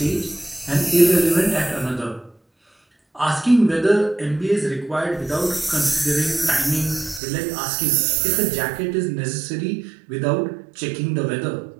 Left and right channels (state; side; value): drops out; left; at 7.2 s